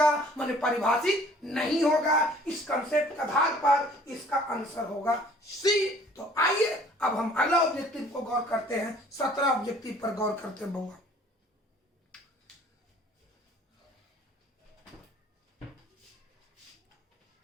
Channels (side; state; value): both; normal; correlation 0.54